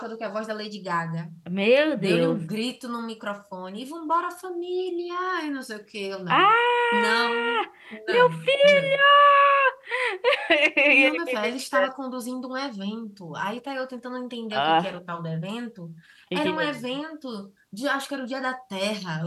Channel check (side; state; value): both; identical; correlation 1.00